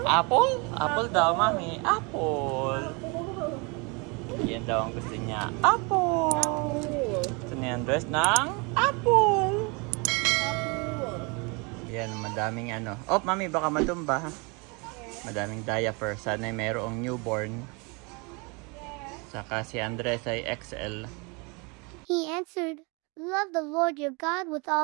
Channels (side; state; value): left; quieter; 30.2 dB